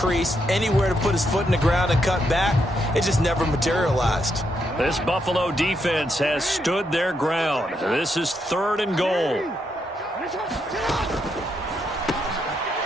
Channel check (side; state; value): both; normal; correlation 0.79